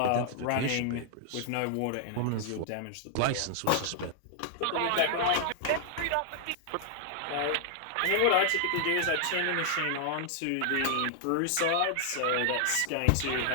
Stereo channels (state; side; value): different; both; correlation -0.01